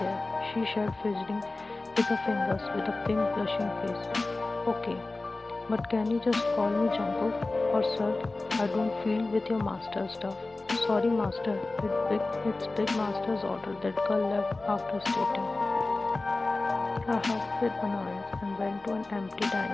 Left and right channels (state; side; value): quieter; right; 3.2 dB